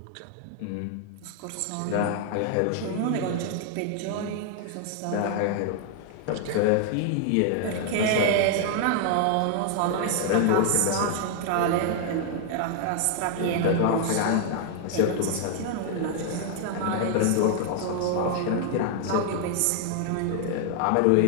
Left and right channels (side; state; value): both; different; correlation 0.00